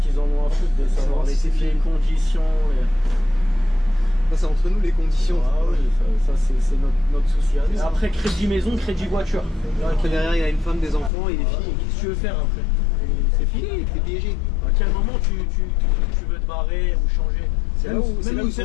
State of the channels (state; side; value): drops out; right; at 11.1 s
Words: en ont à foutre de savoir les conditions Ça, c'est entre nous les conditions. Ah oui, ça c'est notre souci. Après, crédit maison, crédit voiture. Après, derrière, il y a une femme, des enfants, il est fini. Qu'est-ce que tu veux faire après? C'est fini, t'es piégé. À quel moment tu veux te barrer ou changer? C'est là où ils